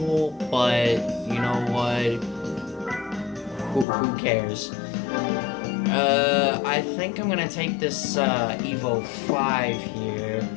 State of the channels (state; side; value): drops out; right; at 3.9 s